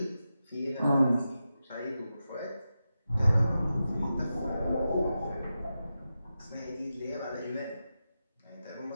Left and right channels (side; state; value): both; inverted; correlation -0.91